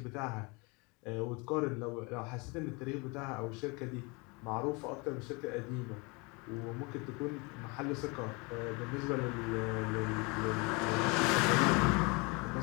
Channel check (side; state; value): right; quieter; 28.5 dB